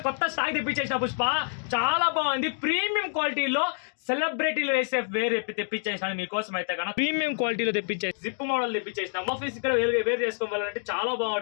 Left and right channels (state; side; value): silent; right; digital silence